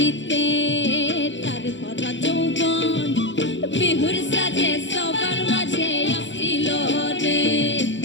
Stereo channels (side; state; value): right; late; 0.54 ms